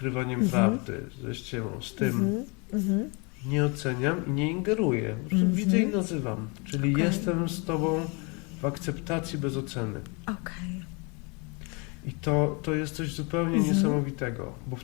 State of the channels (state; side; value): quieter; right; 31.4 dB